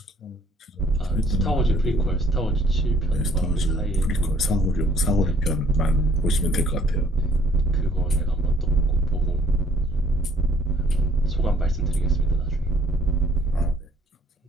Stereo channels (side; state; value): both; normal; correlation 0.60